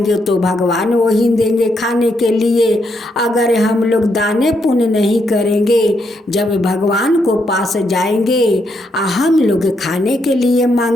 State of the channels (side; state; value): both; normal; correlation 0.78